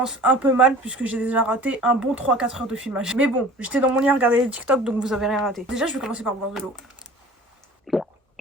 un peu mal puisque j'ai déjà raté un bon 3-4 heures de filmage. Mais bon, j'étais dans mon lit à regarder les TikTok, donc vous avez rien raté. Déjà, je vais commencer par boire de l'eau.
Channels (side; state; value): both; normal; correlation 0.44